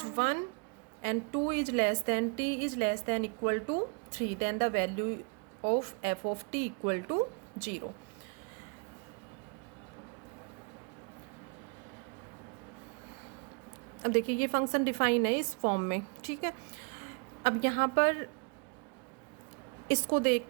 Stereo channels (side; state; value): left; quieter; 35.1 dB